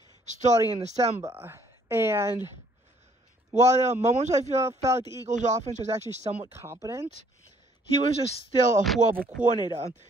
starting in December. And while there were moments I felt like the Eagles' offense was actually somewhat competent, he was just still a horrible coordinator.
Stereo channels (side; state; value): both; normal; correlation 0.63